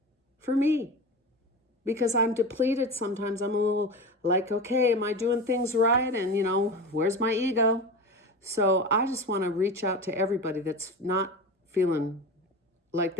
For me. Because I'm depleted sometimes. I'm a little like, okay, am I doing things right? And, where's my ego? So I just want to reach out to everybody that's not feeling like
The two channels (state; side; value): normal; both; correlation 0.28